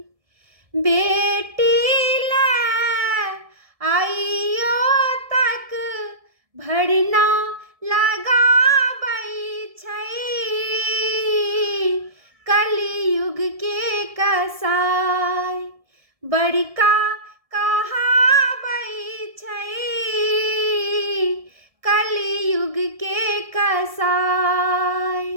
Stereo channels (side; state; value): left; late; 1.7 ms